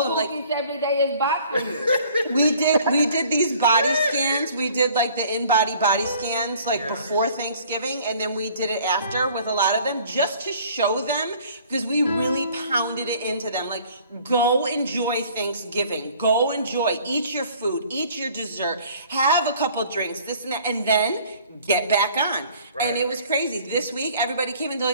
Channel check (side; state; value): both; inverted; correlation -0.54